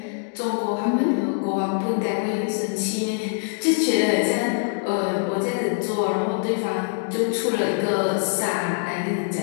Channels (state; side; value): silent; right; digital silence